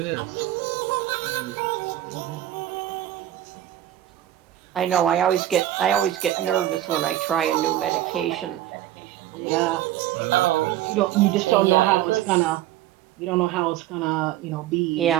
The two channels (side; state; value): left; quieter; 13.1 dB